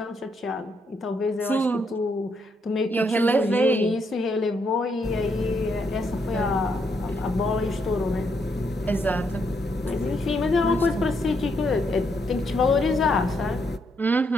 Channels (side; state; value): both; normal; correlation 0.76